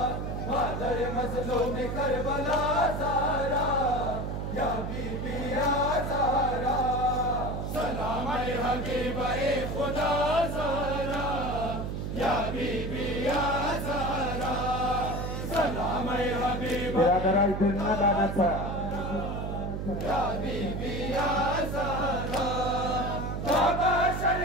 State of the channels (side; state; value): right; noise; hum, 4 dB below the sound